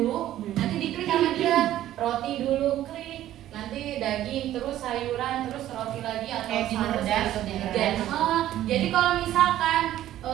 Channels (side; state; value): left; quieter; 13.1 dB